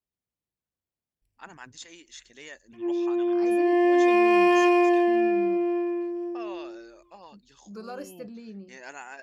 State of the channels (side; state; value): both; identical; correlation 1.00